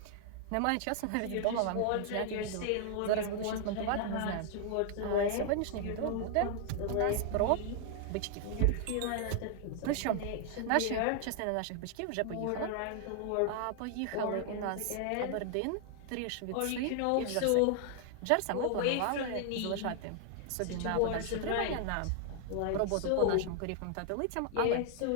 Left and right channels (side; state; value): both; different; correlation 0.00